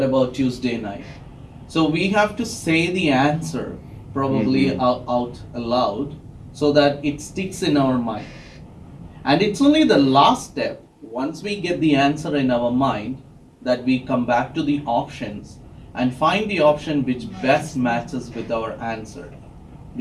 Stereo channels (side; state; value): both; identical; correlation 1.00